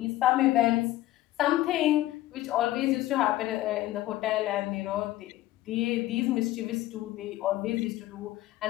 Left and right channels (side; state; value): right; quieter; 15.6 dB